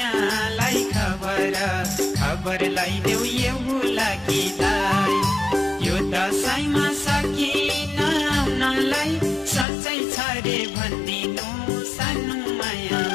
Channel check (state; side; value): drops out; right; at 9.7 s